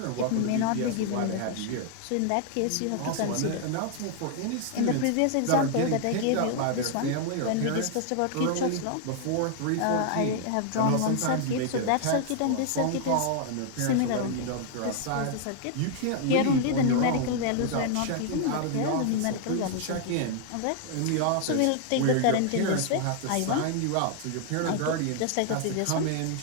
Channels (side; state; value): both; different; correlation 0.00